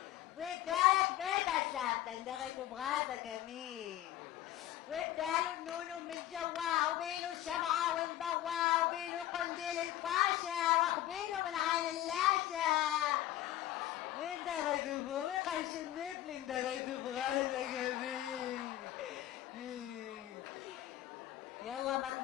وادالك بيت الثابتة اندغت براسة كمين واداله النونو من جوا وبينه الشمعة والضوا وبينه قنديل الفاشا واخبينه من عين اللاشة واندغت بو وقرش النفل اندغت براسة كمين. يلا ما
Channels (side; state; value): right; quieter; 13.7 dB